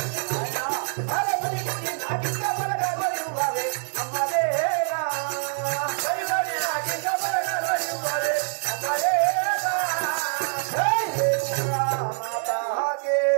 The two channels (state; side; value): silent; left; 55 dB below the other